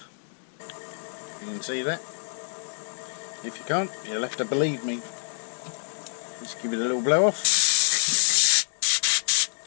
You can see that? If you can't, you'll have to believe me. Just give it a little blow off.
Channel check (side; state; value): right; silent; digital silence